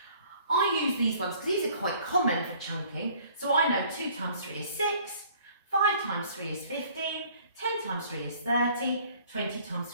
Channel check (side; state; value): both; inverted; correlation -0.55